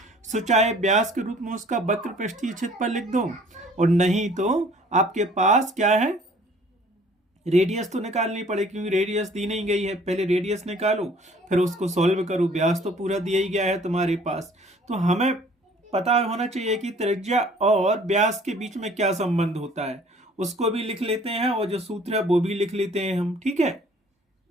सो चाहे व्यास के रूप में उसका वक्र पृष्ठीय क्षेत्रफल लिख दो, और नहीं तो आपके पास क्या है? रेडियस तो निकालनी पड़ेगी, क्योंकि रेडियस दी नहीं गई है। पहले रेडियस निकालो, फिर उसको सॉल्व करो। व्यास तो पूरा दिया ही गया है तुम्हारे पास, तो हमें पता होना चाहिए कि त्रिज्या और व्यास के बीच में क्या संबंध होता है। उसको भी लिख लेते हैं, और जो सूत्र है वो भी लिख लेते हैं हम। ठीक है,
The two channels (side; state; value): both; normal; correlation 0.54